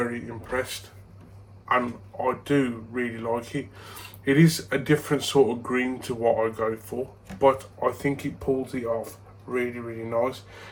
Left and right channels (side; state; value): both; identical; correlation 1.00